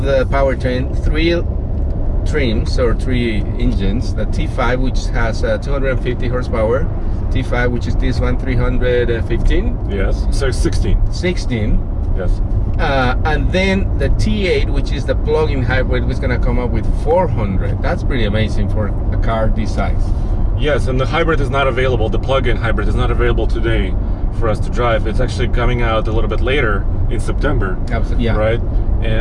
the powertrain, 3 trims or 3 engines: the T5, which has 250 horsepower, T5, which is this one, 315, Yes. So 16. 16. Yes. And then the T8, which is the plug-in hybrid, was gonna come up with 400. That's pretty amazing for a car this size. Yes, and the hybrid is not available. The plug-in hybrid is not available today for us to drive. It's actually coming out a little bit later in September. Absolutely, yeah. Right.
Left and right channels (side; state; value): both; identical; correlation 1.00